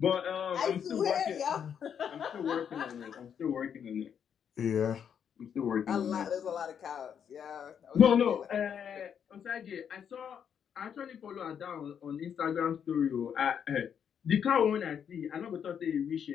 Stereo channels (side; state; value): right; quieter; 8.0 dB